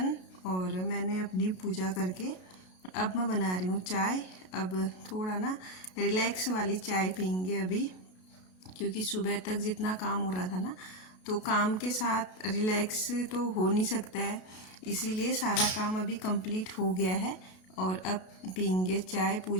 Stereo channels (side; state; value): right; late; 32 ms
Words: और मैंने अपनी पूजा करके अब मैं बना रही हूँ चाय। अब थोड़ा ना रिलैक्स वाली चाय पीएंगे अभी, क्योंकि सुबह तक जितना काम हो रहा था ना, तो काम के साथ रिलैक्स तो हो नहीं सकता है, इसीलिए सारा काम अभी कंप्लीट हो गया है। और अब पीएंगे चाय,